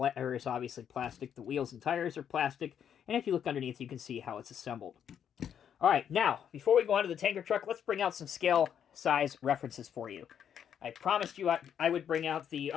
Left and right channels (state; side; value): quieter; right; 8.7 dB